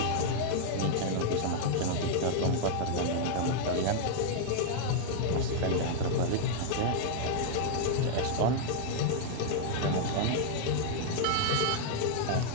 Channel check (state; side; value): different; both; correlation -0.01